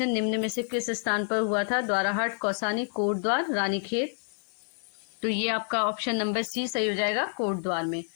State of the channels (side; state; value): right; silent; 59 dB below the other